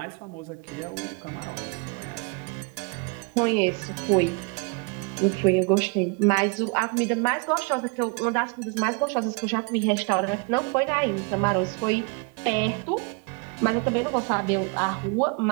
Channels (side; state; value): left; quieter; 33.2 dB